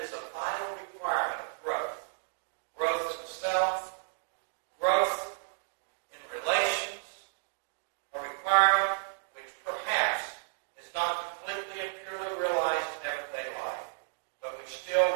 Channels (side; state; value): left; silent; digital silence